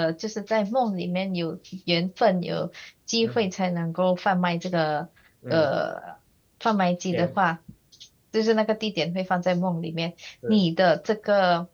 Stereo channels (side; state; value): both; identical; correlation 1.00